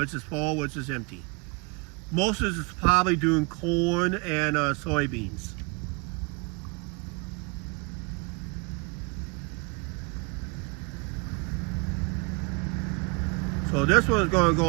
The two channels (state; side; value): quieter; left; 30.2 dB